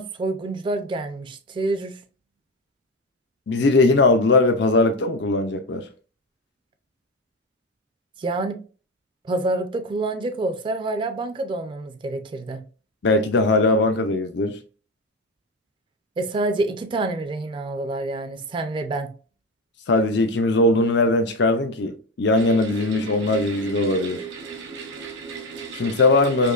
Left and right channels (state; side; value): normal; both; correlation 0.16